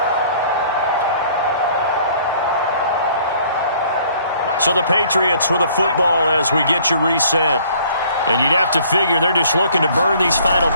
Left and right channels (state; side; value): inverted; both; correlation -0.57